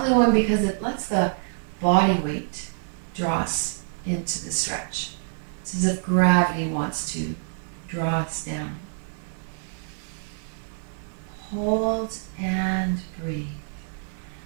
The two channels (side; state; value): left; silent; 61 dB below the other